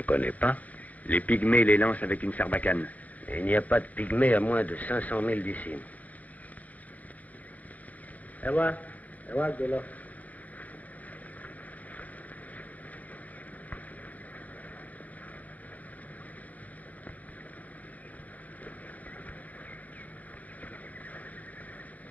connais pas. Les pygmées les lancent avec une sarbacane. Et il n'y a pas de pygmée à moins de 500 000 d'ici.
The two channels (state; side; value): late; right; 0.074 ms